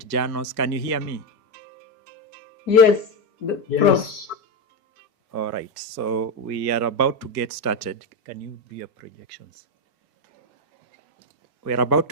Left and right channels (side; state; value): both; normal; correlation 0.11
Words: Janos, can you hear me? Yes, Yes. All right, so we are about to get started. Can you do your projections? We are about